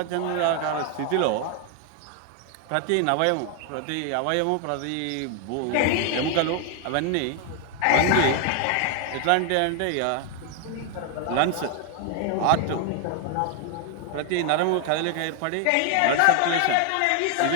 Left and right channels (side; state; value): both; different; correlation 0.00